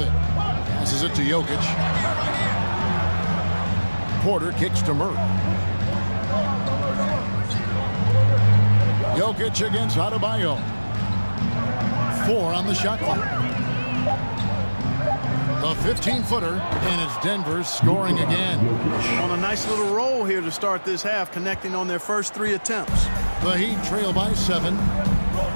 it. Passes it to Jokic. Porter kicks to Murray. Jokic against Adebayo. 4 on the shot clock. The 15-footer, and it's Denver scoring again. On a nice little roll here to start this half, connecting on their first 3 attempts. The Heat trail by 7.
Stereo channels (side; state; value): both; inverted; correlation -1.00